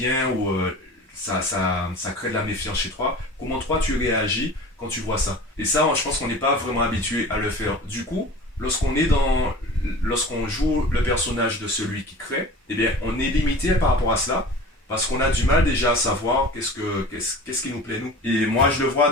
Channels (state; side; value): normal; both; correlation 0.39